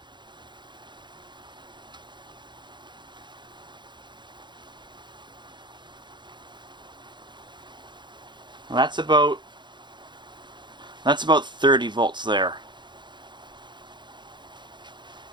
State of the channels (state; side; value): late; left; 0.22 ms